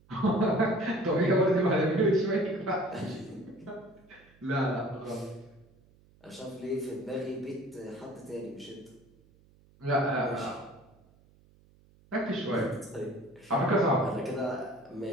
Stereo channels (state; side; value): noise; right; hum, 29 dB below the sound